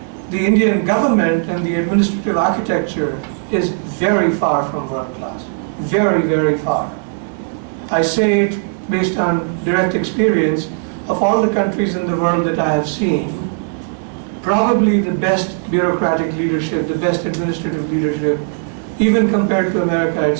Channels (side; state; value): left; silent; digital silence